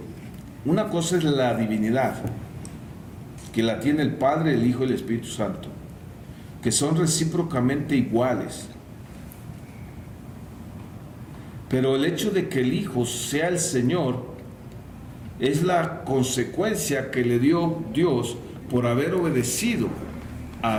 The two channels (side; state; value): both; identical; correlation 1.00